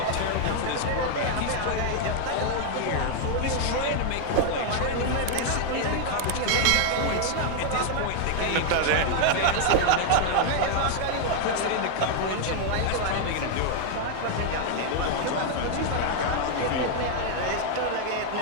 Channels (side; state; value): both; different; correlation 0.00